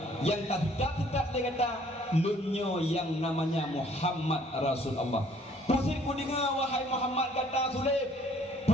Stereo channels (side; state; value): both; normal; correlation 0.59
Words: yang tak dia kata lunyo yang namanya Muhammad Rasul Allah pusir ku dengar wahai Muhammad kata sulit